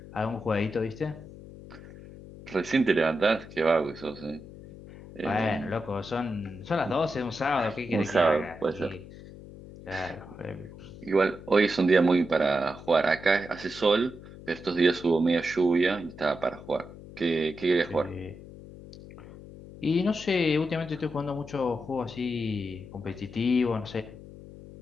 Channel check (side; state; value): left; noise; hum, 16 dB below the sound